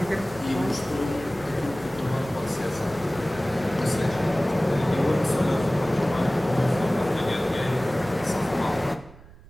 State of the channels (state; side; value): noise; right; rumble, 21 dB below the sound